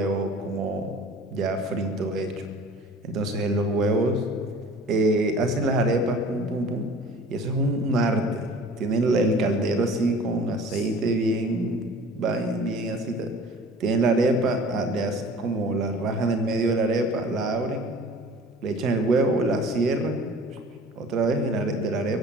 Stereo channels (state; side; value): normal; both; correlation 0.45